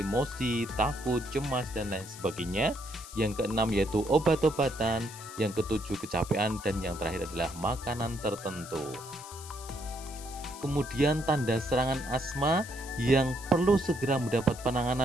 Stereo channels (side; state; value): left; noise; hiss, 15 dB below the sound